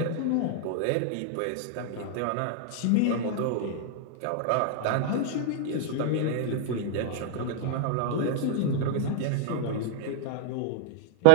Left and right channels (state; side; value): different; both; correlation -0.01